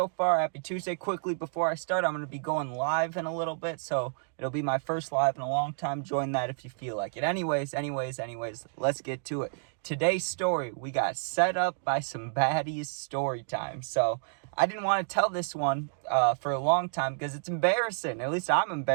far. Happy Tuesday. Quickly, before I start, I'm going to be going live in a little bit, so it'll be my first live in a long time. Join that if you feel like it. Anyways, let's get to it. Today's story, we got set up by some baddies story time. So, I didn't want to tell this one for a long time because it's embarrassing. At least I'm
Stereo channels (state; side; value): silent; left; digital silence